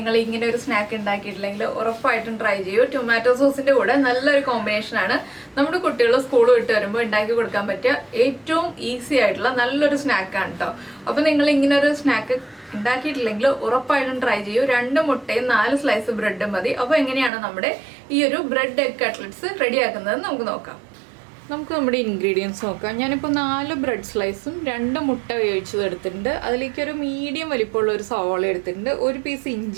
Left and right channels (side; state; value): left; drops out; at 17.3 s